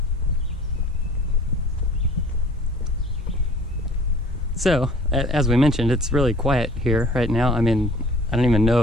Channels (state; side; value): normal; both; correlation 0.50